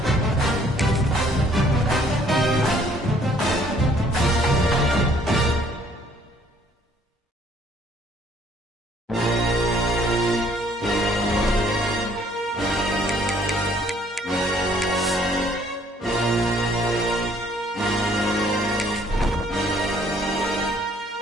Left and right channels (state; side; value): normal; both; correlation 0.61